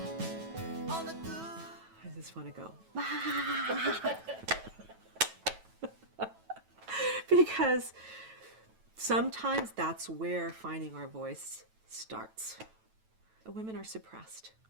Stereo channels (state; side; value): late; left; 9.1 ms